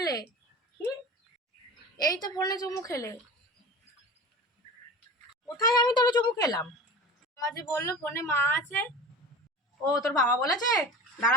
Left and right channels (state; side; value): normal; both; correlation 0.35